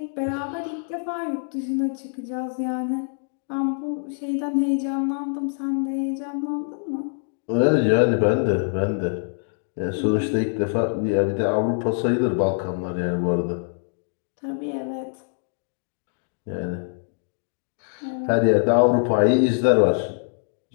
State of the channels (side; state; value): right; silent; 62 dB below the other